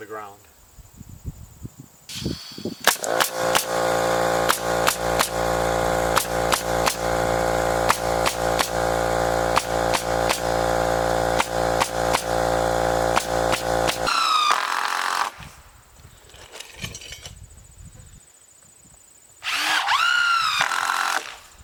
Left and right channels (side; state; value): both; identical; correlation 1.00